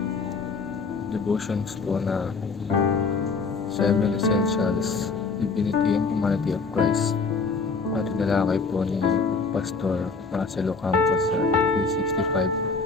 na 7 Essentials, Divinity and Humanity of Christ at tinalakay po ni Pastor Marcelo Campos sa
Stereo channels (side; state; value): right; quieter; 4.5 dB